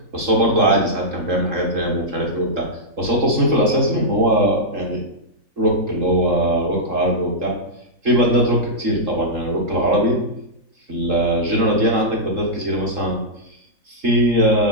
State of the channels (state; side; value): late; left; 3.7 ms